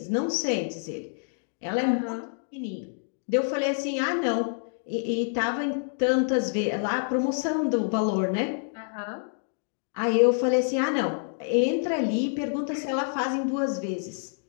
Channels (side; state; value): right; silent; digital silence